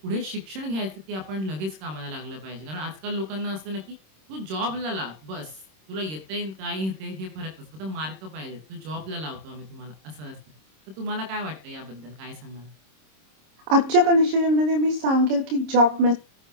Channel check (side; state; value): left; late; 26 ms